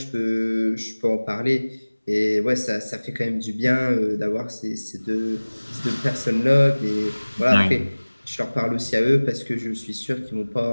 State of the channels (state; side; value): inverted; both; correlation -1.00